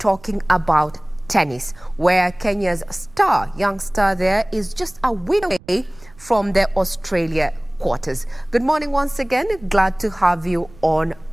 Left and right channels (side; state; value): right; noise; rumble, 24 dB below the sound